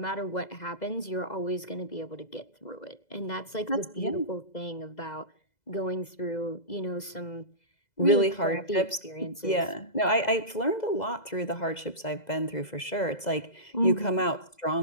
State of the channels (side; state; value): right; late; 2.0 ms